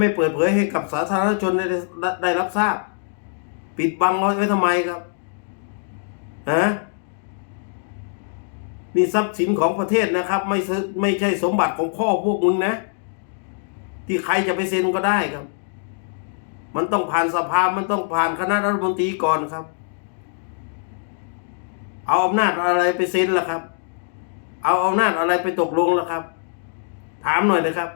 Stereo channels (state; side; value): silent; right; 64 dB below the other